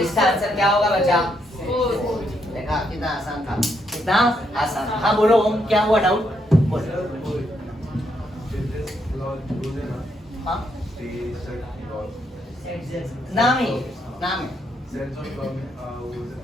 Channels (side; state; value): both; normal; correlation 0.76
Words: आंसर क्या होगा बच्चा, देखा कितना आसान था, कितना आसान। हाँ बोलो ओम, क्या हुआ डाउट, बोलो। हाँ नाम है